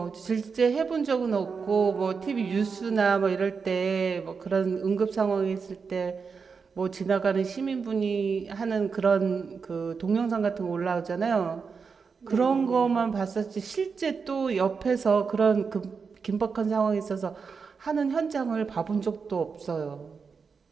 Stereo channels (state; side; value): quieter; left; 5.4 dB